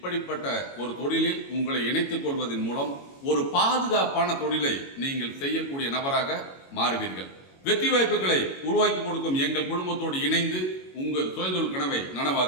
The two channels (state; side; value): late; right; 22 ms